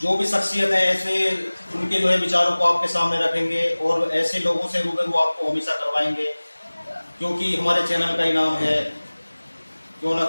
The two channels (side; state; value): both; inverted; correlation -1.00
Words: जो भी शख्सियत है, ऐसे उनके जो है विचारों को आपके सामने रखेंगे, और ऐसे लोगों से रूबरू आपको हमेशा करवाएंगे, क्योंकि हमारे चैनल का ही नाम है क्यों ना